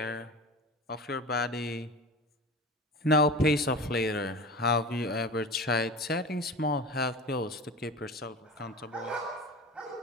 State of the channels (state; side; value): normal; both; correlation 0.32